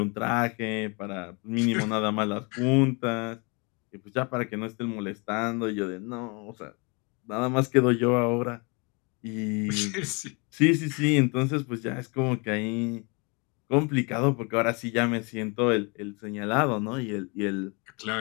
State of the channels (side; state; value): right; quieter; 31.3 dB